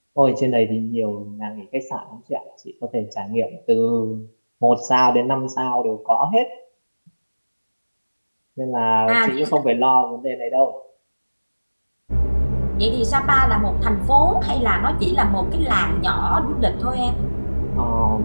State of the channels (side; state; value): both; inverted; correlation -1.00